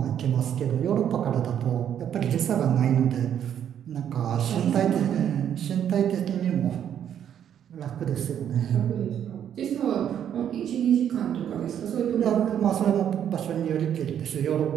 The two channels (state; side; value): quieter; left; 9.5 dB